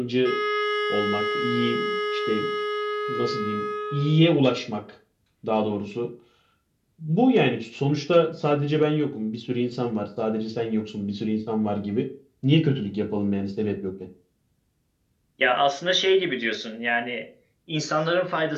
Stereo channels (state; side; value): identical; both; correlation 1.00